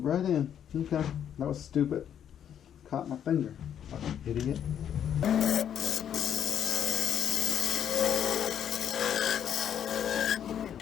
right in. Okay. That was stupid. Caught my finger. Fucking idiot.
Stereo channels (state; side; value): quieter; right; 9.3 dB